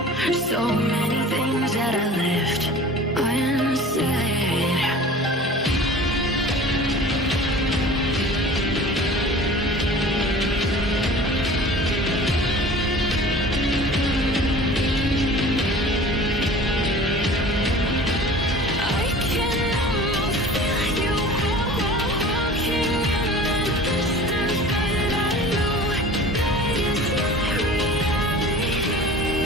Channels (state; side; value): normal; both; correlation 0.42